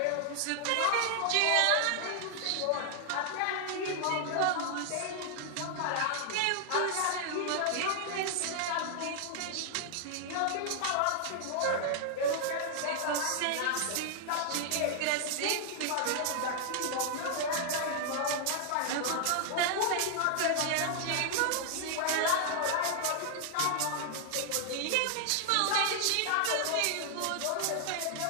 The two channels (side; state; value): both; different; correlation 0.00